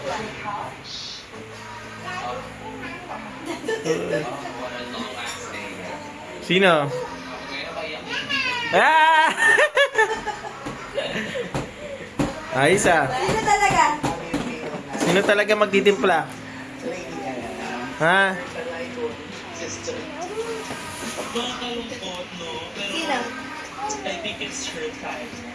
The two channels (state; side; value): identical; both; correlation 1.00